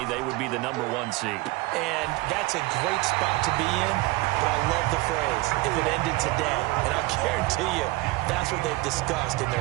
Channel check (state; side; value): quieter; left; 21.1 dB